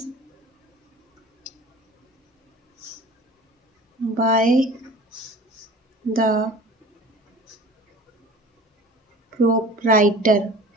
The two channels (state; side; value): normal; both; correlation 0.42